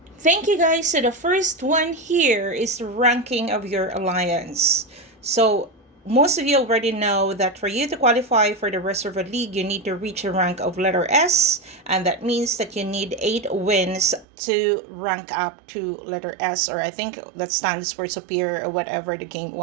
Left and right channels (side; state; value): left; drops out; at 14.2 s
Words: Thank you guys. So the first one here is the ranking of your alliance. So most of you already know that for you to qualify for the Reservoir League, you need to reach a rank of letter S, and that means that you need 8 wins to rank up to letter S, or I think that stands for superior or whatever the game